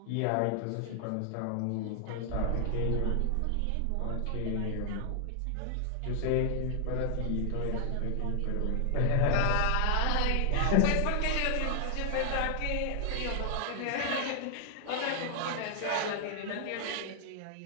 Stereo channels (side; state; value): both; different; correlation 0.00